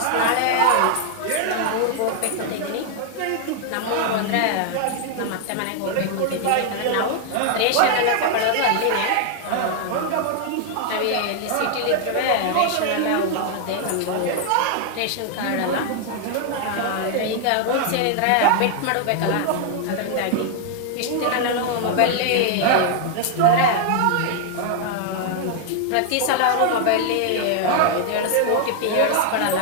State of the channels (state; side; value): different; both; correlation 0.00